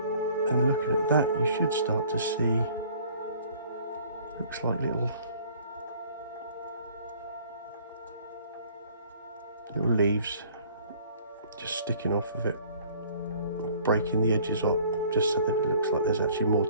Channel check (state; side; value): inverted; both; correlation -0.54